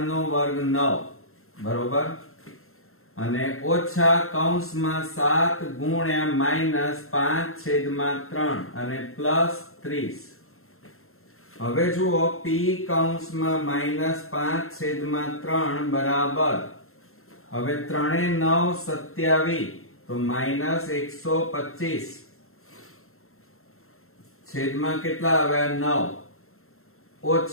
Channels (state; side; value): late; right; 0.62 ms